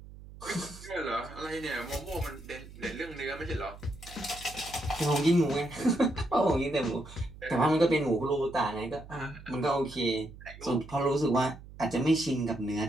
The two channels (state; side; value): noise; right; hum, 17 dB below the sound